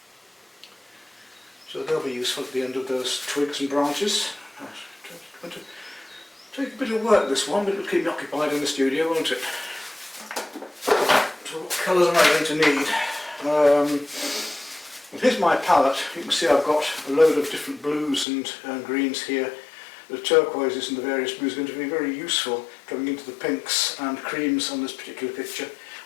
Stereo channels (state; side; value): drops out; right; at 18.2 s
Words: So they'll be useful at the end of those twigs and branches. It's going to take a bit of work, this one, but it'll keep me occupied in the studio, won't it? So what colours am I going to need? Well, here's my palette. You can see I've got a load of different blues and greens here. The turquoises and the various blues are going to be very useful coming into the pinks and creams on this particular picture.